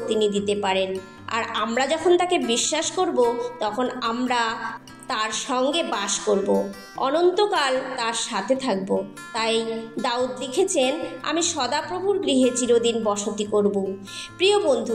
তিনি দিতে পারেন। আর আমরা যখন তাকে বিশ্বাস করব, তখন আমরা তার সঙ্গে বাস করব, অনন্তকাল তার সাথে থাকব। তাই দাউদ লিখেছেন, আমি সদাপ্রভুর গৃহে চিরদিন বসতি করব। প্রিয়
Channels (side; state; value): both; identical; correlation 1.00